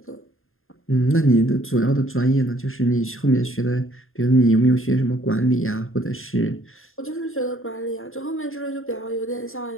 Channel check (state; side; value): late; right; 0.60 ms